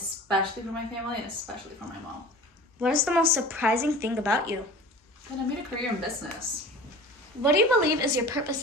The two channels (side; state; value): both; normal; correlation 0.39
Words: for my family and especially for my mom. What is the most surprising thing about you? And I made a career in business. What do you believe is your purpose